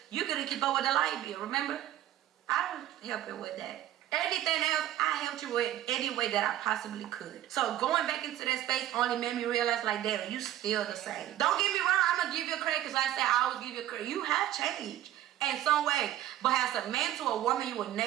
you couldn't keep up with the light bill. Remember? I was helping with that. Anything else, I helped you with any way that I possibly could. So going back into that space only made me realize, like, damn, you still the same. Don't get me wrong, I'm gonna give you credit because I said I always give you credit. You have changed in some way, but as a man to a woman, you will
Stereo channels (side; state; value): left; quieter; 12.9 dB